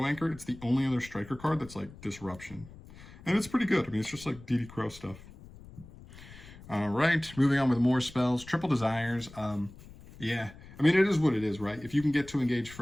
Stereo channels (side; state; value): left; noise; rumble, 18 dB below the sound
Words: Anchor, it's the only other striker card that's like Disruption, and it's pretty good. I mean, it's just like DD Crow stuff. All right, moving on with more spells. Triple Desires. Yeah, I mean, it is what it is, right? If you can get to Engage